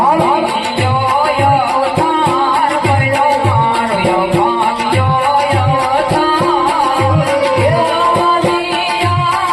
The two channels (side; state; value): both; identical; correlation 1.00